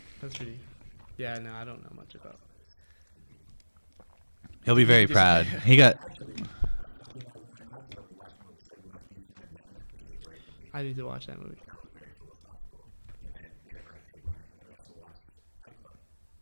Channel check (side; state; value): both; inverted; correlation -1.00